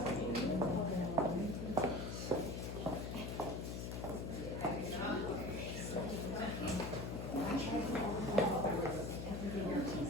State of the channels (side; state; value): left; noise; hum, 4 dB below the sound